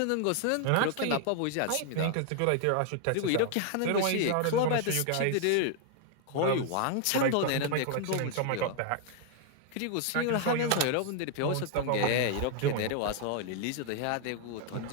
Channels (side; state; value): both; different; correlation 0.00